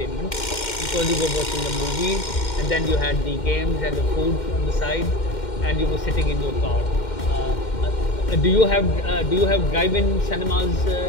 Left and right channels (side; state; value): right; late; 2.1 ms